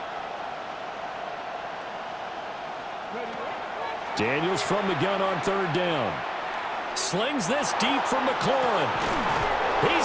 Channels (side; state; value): both; identical; correlation 1.00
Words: Daniels from the gun on third down. Slings this deep from McLaurin.